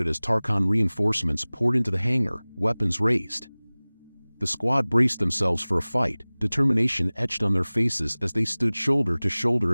as Tarkhan reinforcements poured into the hangar, weapons raised. The squad braced themselves for a fight, determination etched on their faces as they stood shoulder to shoulder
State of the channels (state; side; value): inverted; both; correlation -1.00